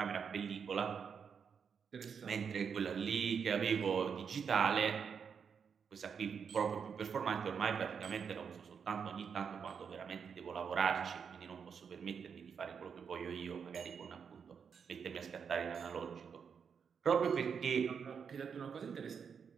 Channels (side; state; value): left; quieter; 6.6 dB